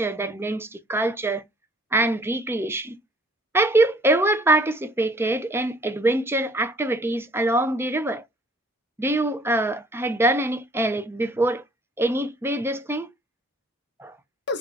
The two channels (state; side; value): normal; both; correlation 0.57